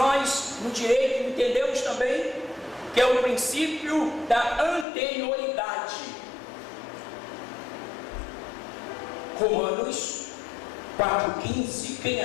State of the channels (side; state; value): right; drops out; at 4.9 s